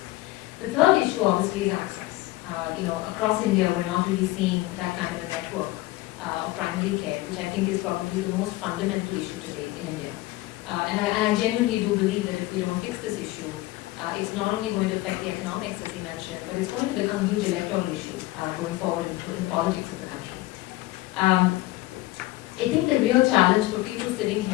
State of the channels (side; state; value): right; quieter; 18.5 dB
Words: The third issue obviously is access. Across India we're not really seeing that kind of a network of primary care, which I think is probably the most fundamental issue today in India. And I genuinely do believe that if we don't fix this issue, it's not only going to affect the economics, as he mentioned, but it's going to become a huge electoral issue going forward in politics of the country. I think the real challenge for people sitting